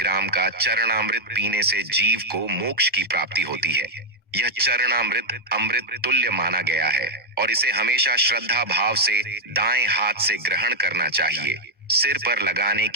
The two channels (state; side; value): normal; both; correlation -0.01